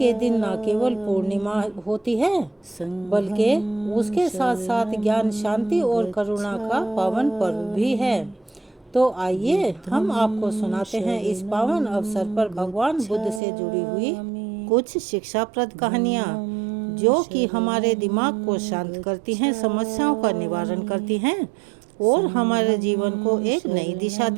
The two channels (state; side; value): drops out; left; at 13.4 s